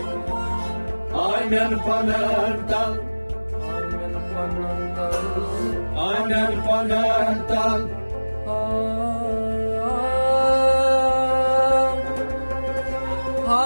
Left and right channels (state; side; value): inverted; both; correlation -1.00